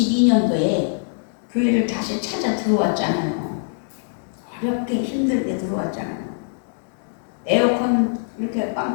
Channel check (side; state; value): right; silent; digital silence